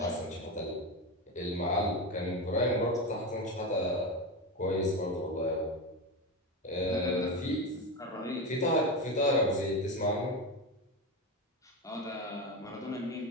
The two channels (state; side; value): normal; both; correlation 0.17